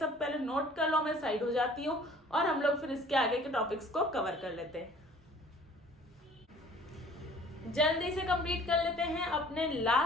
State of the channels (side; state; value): both; normal; correlation 0.51